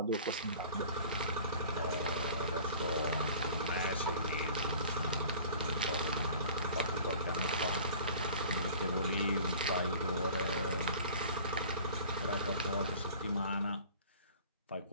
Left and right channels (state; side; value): inverted; both; correlation -0.45